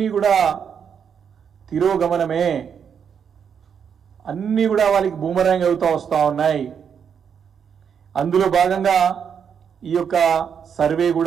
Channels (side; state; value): left; quieter; 7.4 dB